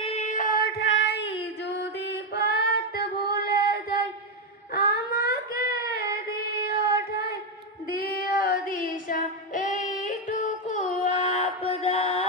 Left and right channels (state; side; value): normal; both; correlation 0.06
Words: ঠাই, যদি পথ ভুলে যাই আমাকে দিও ঠাই, দিও দিশা এইটুকু